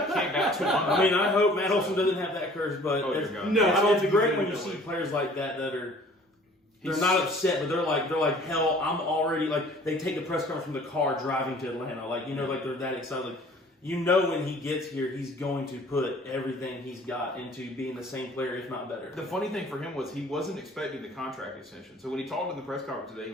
200. I hope Matt Olson doesn't have that curse, but it's great when you see players like that are they're not upset, but they're like hell. I'm already they take the press conference from the car driving to Atlanta. They're that excited. When he gets here, he's going to put everything he's got into being the same player, if not better. The funny thing for him was he wasn't expecting the contract extension. So when he talked in the press conference today,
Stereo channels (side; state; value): both; normal; correlation 0.52